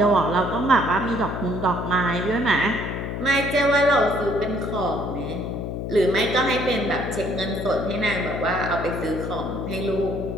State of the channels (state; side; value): noise; left; hum, 5 dB below the sound